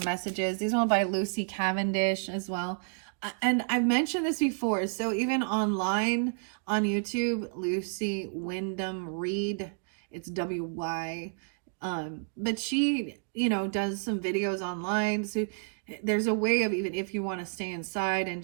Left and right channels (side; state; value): left; silent; 58 dB below the other